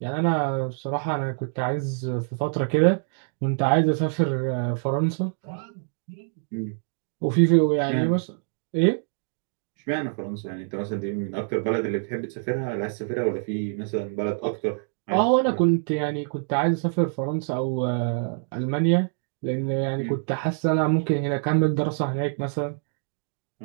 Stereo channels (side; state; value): left; silent; digital silence